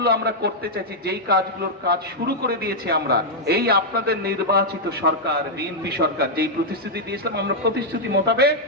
আমরা করতে চাইছি, যেই কাজগুলোর কাজ শুরু করে দিয়েছি আমরা, এই আপনাদের নির্বাচিত সরকার, বিএনপি সরকার যেই প্রতিশ্রুতি দিয়েছিলাম, আমরা প্রতিশ্রুতি মোতাবেক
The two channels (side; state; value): both; normal; correlation -0.04